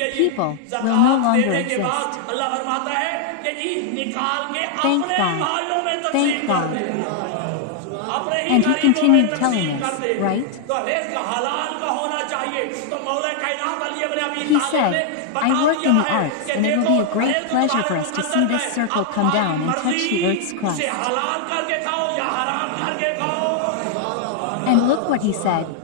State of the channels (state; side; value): different; both; correlation 0.00